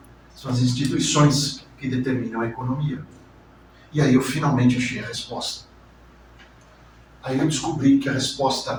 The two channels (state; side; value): identical; both; correlation 1.00